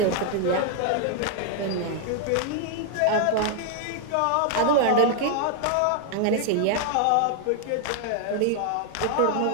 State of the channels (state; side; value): different; both; correlation 0.00